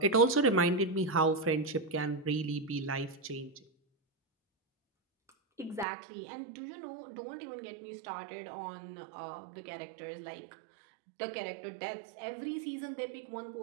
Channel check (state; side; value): drops out; left; at 5.9 s